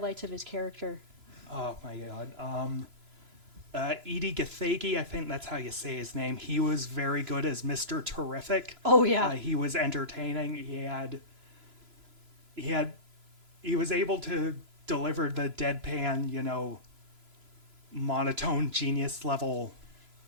of his character. Oh my god. Edie Gathegi, I think that's how you say his name. He was very good as Mr. Terrific. Oh yeah. He was entertaining. He was able to deliver the deadpan, you know, monotone genius level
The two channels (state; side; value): late; left; 3.0 ms